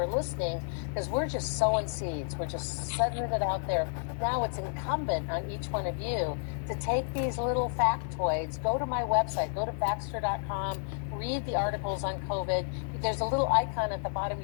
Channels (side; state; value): right; silent; 57 dB below the other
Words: listening, because we're just sowing seeds. We're just setting it out there. Now it's incumbent on each one of you to take these little factoids, go to my website, go to Baxter.com, read the articles on COVID. There's a little icon at the bottom.